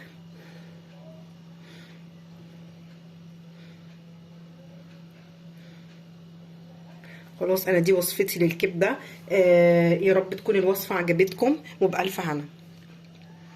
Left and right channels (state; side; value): identical; both; correlation 1.00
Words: خلاص انا دي وصفتي للكبده. يا رب تكون الوصفه عجبتكم وبألف هنا.